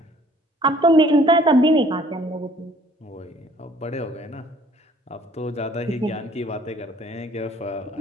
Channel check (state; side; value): normal; both; correlation 0.57